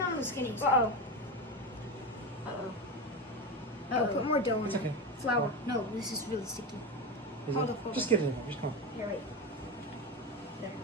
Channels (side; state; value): both; normal; correlation 0.18